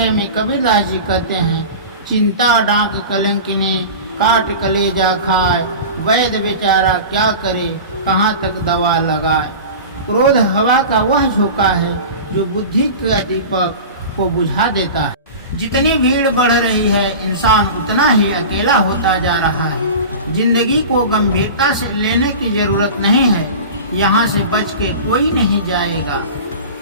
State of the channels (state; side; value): inverted; both; correlation -0.32